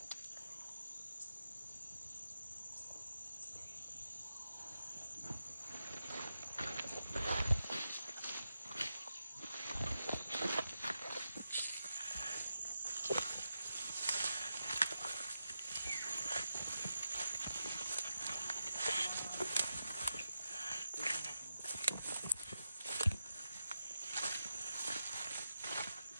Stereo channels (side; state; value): both; inverted; correlation -0.88